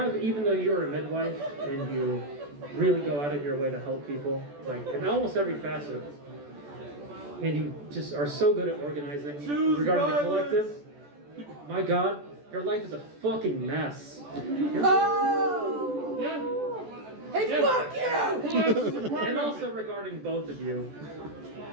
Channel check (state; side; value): late; left; 14 ms